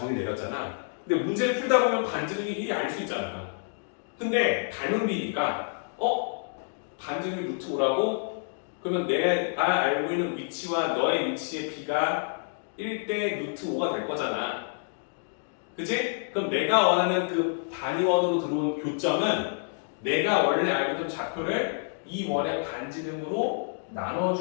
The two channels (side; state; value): right; silent; digital silence